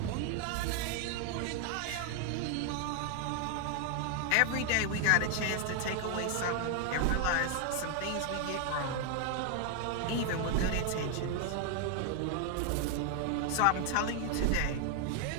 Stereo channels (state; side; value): different; both; correlation 0.01